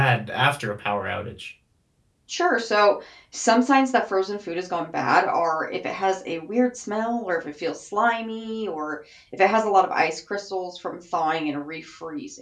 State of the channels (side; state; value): both; identical; correlation 1.00